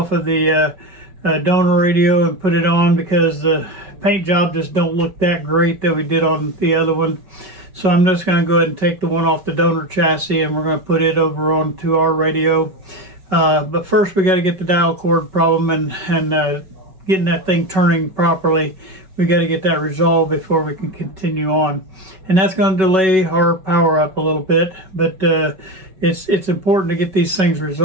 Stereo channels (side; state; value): left; late; 5.3 ms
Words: of the donor radio and put it on, because the paint job just don't look that great that we did on the other one. So I'm just going to go ahead and take the one off the donor chassis, and we're going to put it over onto our radio. But first we got to get the dial cord problem and getting that thing turning properly. We got to get that resolved before we can continue on, and that's going to delay our power up a little bit, but it's important to get these things